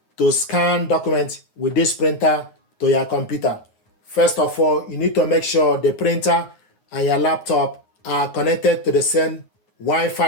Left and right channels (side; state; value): right; late; 9.5 ms